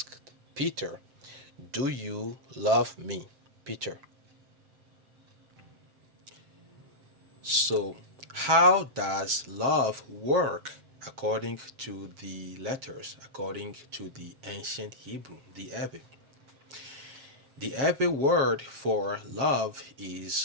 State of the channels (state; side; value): late; left; 7.4 ms